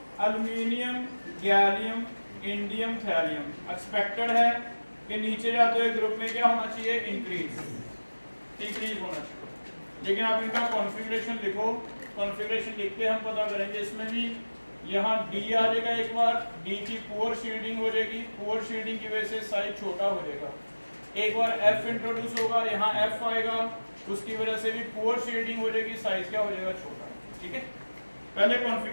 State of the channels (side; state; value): both; inverted; correlation -1.00